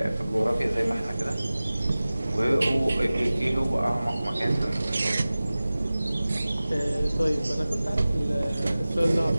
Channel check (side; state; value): both; inverted; correlation -0.97